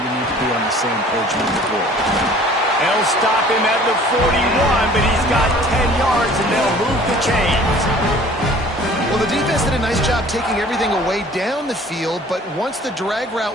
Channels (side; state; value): both; normal; correlation 0.50